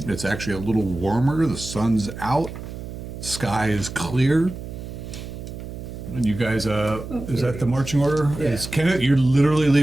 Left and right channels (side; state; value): right; noise; hum, 10 dB below the sound